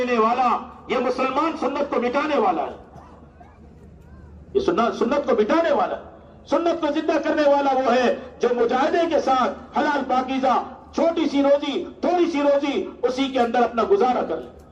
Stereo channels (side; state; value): both; identical; correlation 1.00